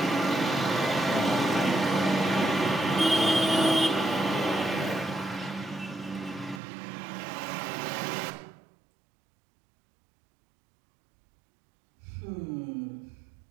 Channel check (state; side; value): drops out; left; at 6.6 s